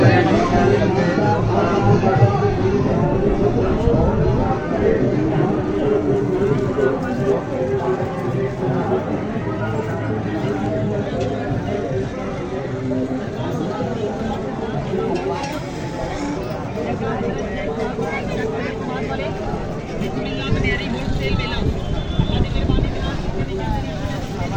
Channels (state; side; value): identical; both; correlation 1.00